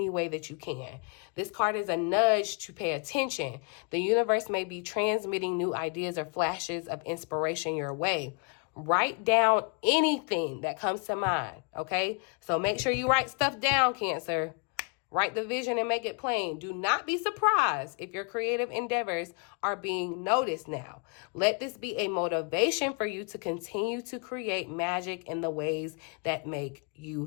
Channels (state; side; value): quieter; right; 36.4 dB